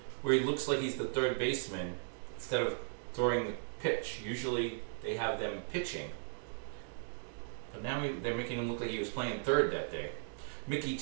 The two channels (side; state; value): left; silent; digital silence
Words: where he looks like he's the third baseman instead of throwing the pitch. Usually they have them pitching, but now they're making him look like he was playing third that day. Mickey